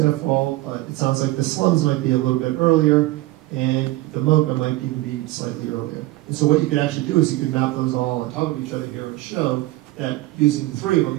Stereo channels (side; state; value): left; quieter; 18.1 dB